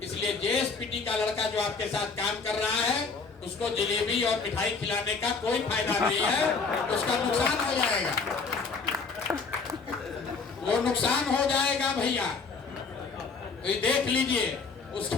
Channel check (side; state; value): right; quieter; 4.7 dB